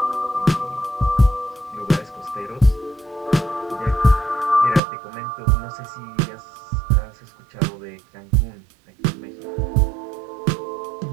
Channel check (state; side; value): drops out; left; at 4.8 s